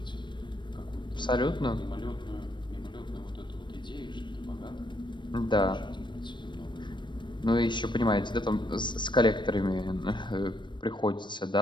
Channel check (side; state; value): right; late; 0.22 ms